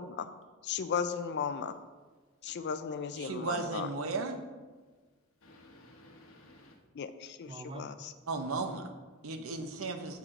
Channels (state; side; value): normal; both; correlation -0.09